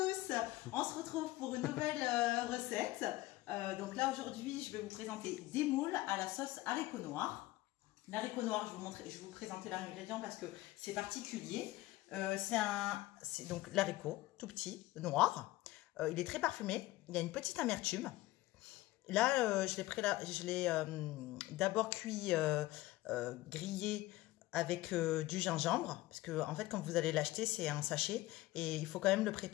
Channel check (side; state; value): right; quieter; 18.0 dB